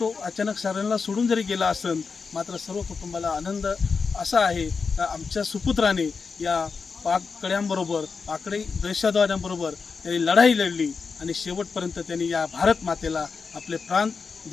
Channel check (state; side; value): quieter; right; 5.1 dB